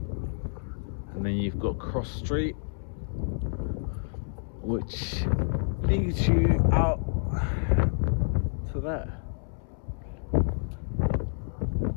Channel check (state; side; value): silent; right; 59 dB below the other